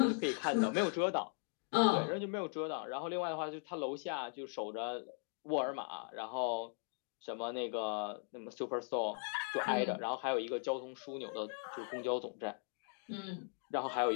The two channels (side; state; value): right; silent; 52 dB below the other